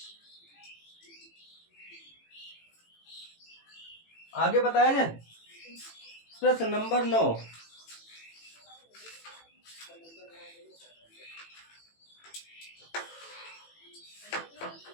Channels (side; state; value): right; late; 18 ms